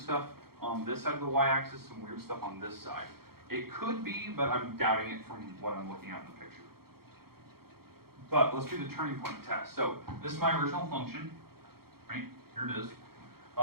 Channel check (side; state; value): left; late; 0.94 ms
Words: on this side of the y-axis, some weird stuff on this side. It could be, but I'm doubting it from what I'm looking at in the picture. But let's do the turning point test. So this is my original function, right? Here it is.